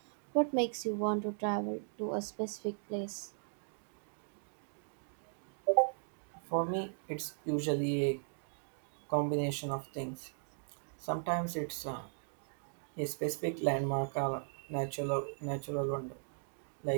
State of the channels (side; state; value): left; silent; digital silence